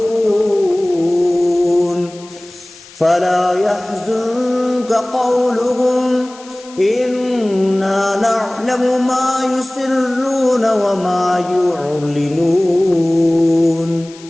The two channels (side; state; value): left; noise; hiss, 21 dB below the sound